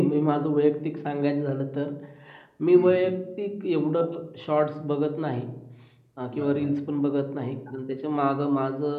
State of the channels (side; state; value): both; identical; correlation 1.00